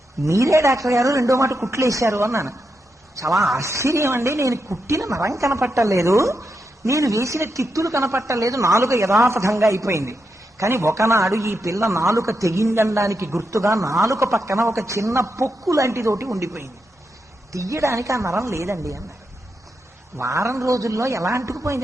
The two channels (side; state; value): both; normal; correlation 0.85